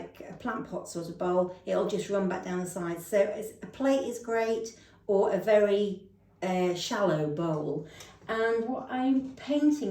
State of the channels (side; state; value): both; identical; correlation 1.00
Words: a plant pot sort of bowl, it'll just run back down the sides. So a plate is great, or a very shallow bowl. And what I'm